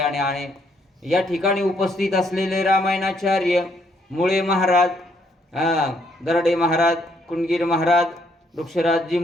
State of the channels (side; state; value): both; normal; correlation 0.71